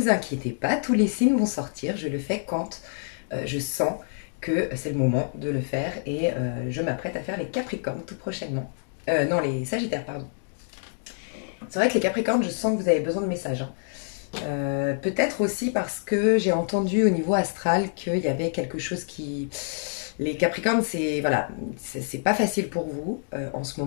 inquiétez pas, tous les signes vont sortir. Je le fais quand je sens que c'est le moment de le faire et je m'apprête à faire les Capricornes tout prochainement. Non, les Sagittaires, pardon. C'est vrai que les Capricornes, je sens que vous avez besoin de messages, hein. Peut-être aussi parce que j'ai entendu au niveau astral qu'il y avait quelque chose qui... Les Capricornes, c'est voilà, c'est pas facile pour vous en ce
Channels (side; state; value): right; silent; digital silence